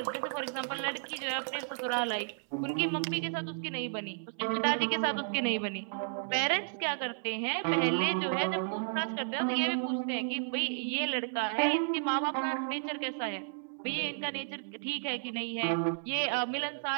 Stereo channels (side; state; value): left; silent; 56 dB below the other